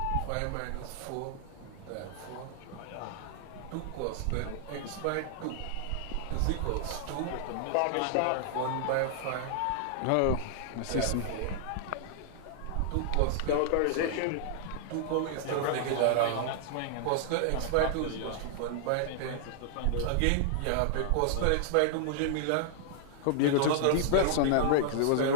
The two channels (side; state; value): both; different; correlation -0.01